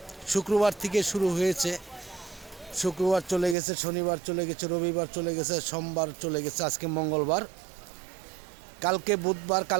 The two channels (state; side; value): drops out; left; at 3.6 s